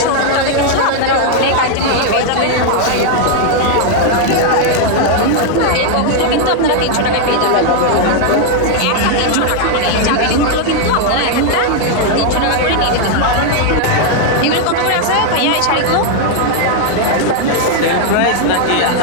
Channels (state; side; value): different; both; correlation 0.00